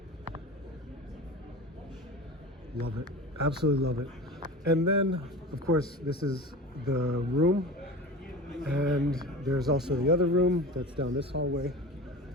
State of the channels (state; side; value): normal; both; correlation 0.33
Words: Love it. Absolutely love it. And then, of course, this is the room. And there's also the other room that's down this hallway.